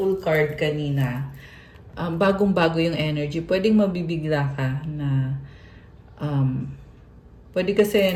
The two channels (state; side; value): identical; both; correlation 1.00